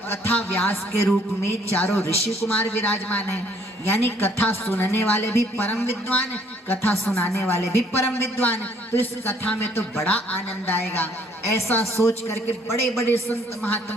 व्यास के रूप में चारों ऋषि कुमार विराजमान हैं, यानी कथा सुनने वाले भी परम विद्वान, कथा सुनाने वाले भी परम विद्वान, तो इस कथा में तो बड़ा आनंद आएगा। ऐसा सोच करके बड़े बड़े संत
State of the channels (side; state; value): both; normal; correlation 0.62